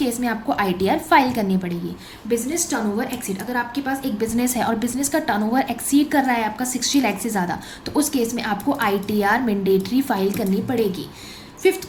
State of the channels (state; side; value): identical; both; correlation 1.00